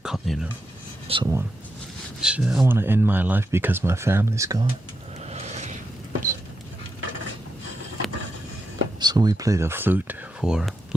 Someone, I want to end my life because my family's gone. So we play the flute for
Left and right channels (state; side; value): normal; both; correlation 0.85